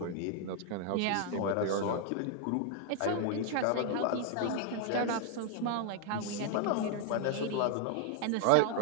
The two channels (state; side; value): different; both; correlation 0.00